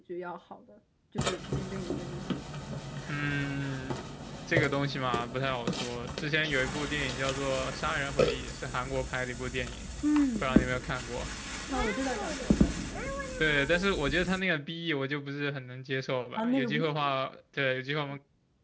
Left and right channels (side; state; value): both; identical; correlation 1.00